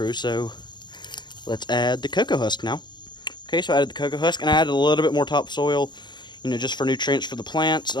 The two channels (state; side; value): late; right; 0.21 ms